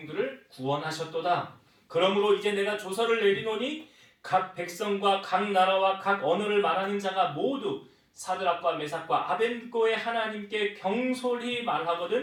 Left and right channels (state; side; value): identical; both; correlation 1.00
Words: 구원하셨도다. 그러므로 이제 내가 조서를 내리노니 각 백성과 각 나라와 각 언어를 말하는 자가 모두 사드락과 메삭과 아벳느고의 하나님께 경솔히